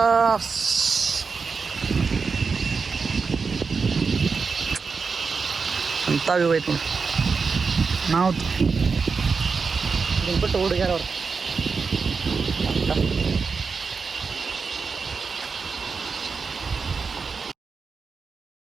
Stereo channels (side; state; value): left; quieter; 5.0 dB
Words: ಅಂತ ವ್ಯೂ ಐತಿ ನಾವು ಬಿಟ್ಟು ಹುಡುಗ್ಯಾರ ಅವ್ರು